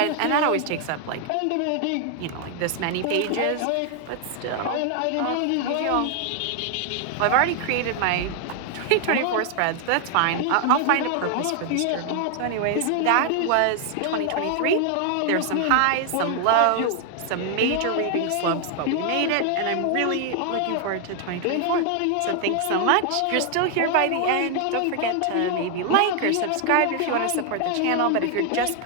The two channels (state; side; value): different; both; correlation 0.00